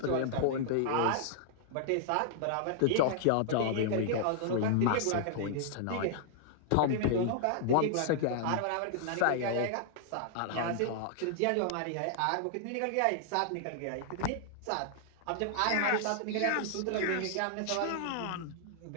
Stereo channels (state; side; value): different; both; correlation -0.01